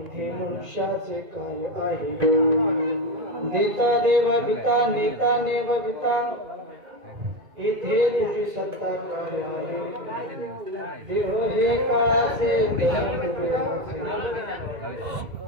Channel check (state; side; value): late; left; 1.9 ms